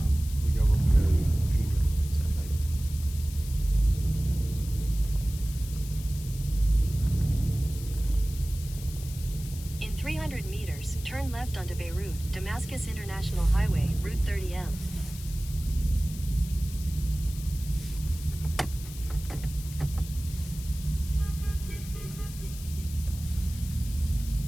We go when we go junior Saturday. In 300 meters, turn left onto Beirut, Damascus International Highway, Route 30M.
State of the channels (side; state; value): left; noise; hiss, 15 dB below the sound